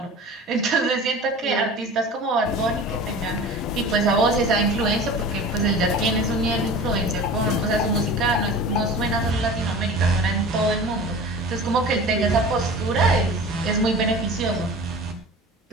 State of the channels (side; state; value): both; normal; correlation 0.37